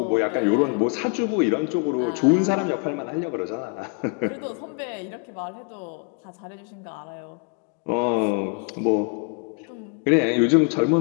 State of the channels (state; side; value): quieter; right; 35.3 dB